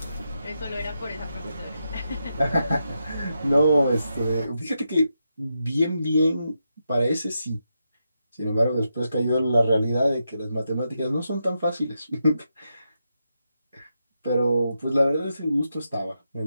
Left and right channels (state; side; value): inverted; both; correlation -0.85